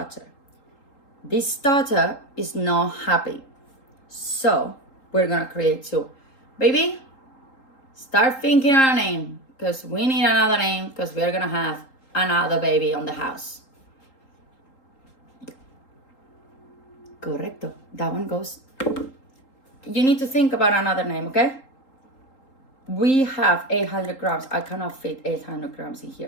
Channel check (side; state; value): right; late; 3.8 ms